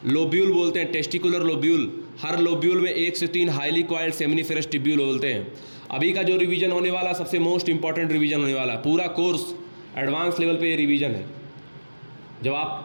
लोब्यूल बोलते हैं, टेस्टिकुलर लोब्यूल। हर लोब्यूल में 1 से 3 हाईली कॉइल्ड सेमिनिफेरस ट्यूब्यूल बोलते हैं। अभी का जो रिवीजन होने वाला सबसे मोस्ट इंपॉर्टेंट रिवीजन होने वाला है, पूरा कोर्स एडवांस लेवल पे ये रिवीजन है। जब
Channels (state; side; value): inverted; both; correlation -1.00